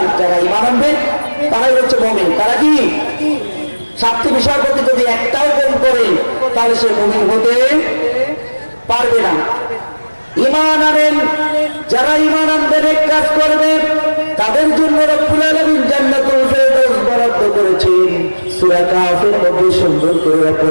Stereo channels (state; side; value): inverted; both; correlation -1.00